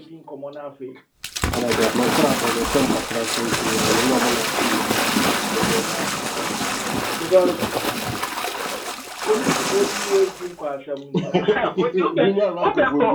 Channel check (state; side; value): identical; both; correlation 1.00